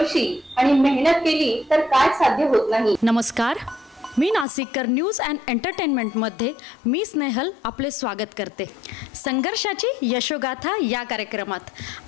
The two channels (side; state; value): right; drops out; at 4.5 s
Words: आणि मेहनत केली तर काय साध्य होत नाही। नमस्कार, मी नाशिककर न्यूज अँड एंटरटेनमेंटमध्ये मी स्नेहल आपले स्वागत करते। संघर्षाची यशोगाथा या कार्यक्रमात